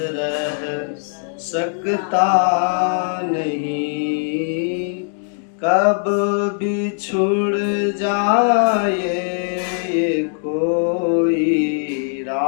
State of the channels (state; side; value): silent; right; 60 dB below the other